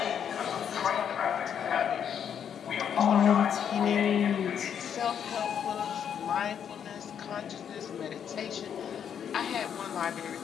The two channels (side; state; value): right; quieter; 8.3 dB